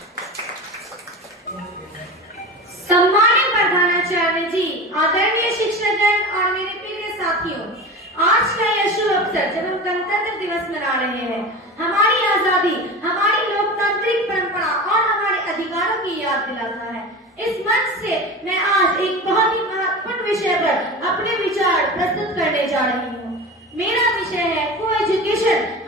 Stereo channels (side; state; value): both; normal; correlation 0.30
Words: सम्मानित प्रधानाचार्य जी, आदरणीय शिक्षकगण और मेरे प्रिय साथियों, आज का यह शुभ अवसर जब हम गणतंत्र दिवस मना रहे हैं, हमारी आजादी, हमारी लोकतांत्रिक परंपरा और हमारे अधिकारों की याद दिलाता है। इस मंच से मैं आज एक बहुत ही महत्वपूर्ण विषय पर अपने विचार प्रस्तुत करने जा रही हूँ। मेरा विषय है को एजुकेशन